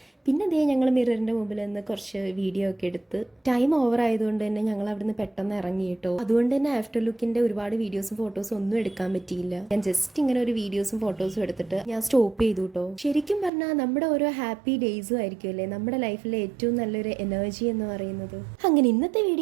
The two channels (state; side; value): drops out; left; at 13.5 s